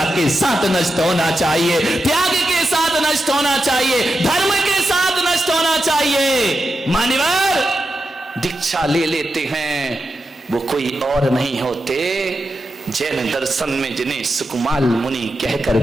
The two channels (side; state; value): both; normal; correlation 0.89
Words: के साथ नष्ट होना चाहिए, त्याग के साथ नष्ट होना चाहिए, धर्म के साथ नष्ट होना चाहिए। मान्यवर दीक्षा ले लेते हैं, वो कोई और नहीं होते, जैन दर्शन में जिन्हें सुकुमार मुनि कह